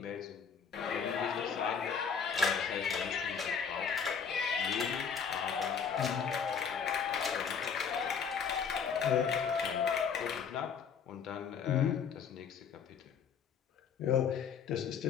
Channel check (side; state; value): right; quieter; 6.7 dB